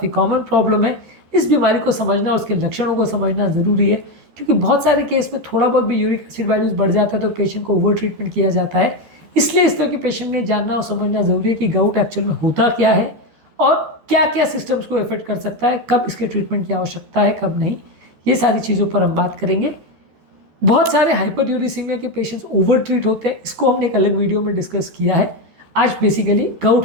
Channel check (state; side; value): late; left; 13 ms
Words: कॉमन प्रॉब्लम है। इस बीमारी को समझना और उसके लक्षणों को समझना ज़रूरी है, क्योंकि बहुत सारे केस में थोड़ा बहुत भी यूरिक एसिड वैल्यूज बढ़ जाता है तो पेशेंट को ओवर ट्रीटमेंट किया जाता है। इसलिए इस तरह के पेशेंट में जानना और समझना ज़रूरी है कि गाउट एक्चुअल में होता क्या है और क्या क्या सिस्टम्स को इफेक्ट कर सकता है, कब इसके ट्रीटमेंट की आवश्यकता है, कब नहीं। ये सारी चीज़ों पर हम बात करेंगे। बहुत सारे हाइपरयूरिसीमिया के पेशेंट्स ओवर ट्रीट होते हैं, इसको हमने एक अलग वीडियो में डिस्कस किया है। आज बेसिकली